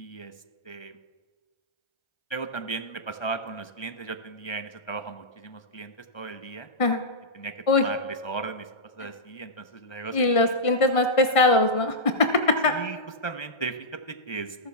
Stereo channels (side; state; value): right; late; 1.5 ms